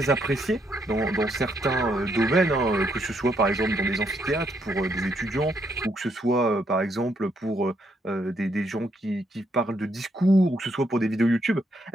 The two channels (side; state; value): both; normal; correlation 0.75